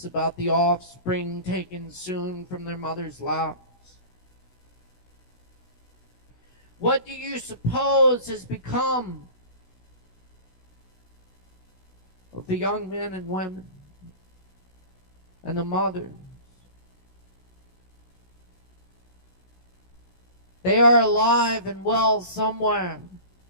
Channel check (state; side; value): late; right; 16 ms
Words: about the offspring taken soon from their mother's laps. What do you suppose has become of the young men and women and the mothers? They are alive and well somewhere.